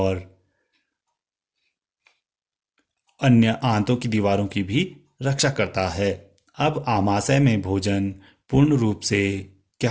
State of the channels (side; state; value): both; identical; correlation 1.00